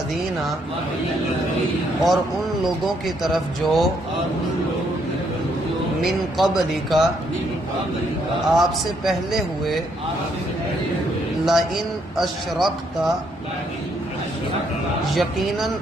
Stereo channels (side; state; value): both; normal; correlation 0.72